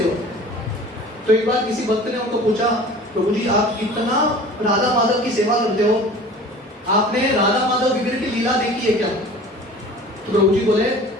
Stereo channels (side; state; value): both; normal; correlation 0.42